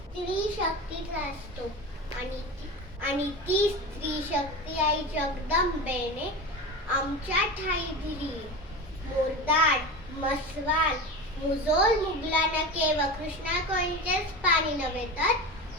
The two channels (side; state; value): both; normal; correlation 0.27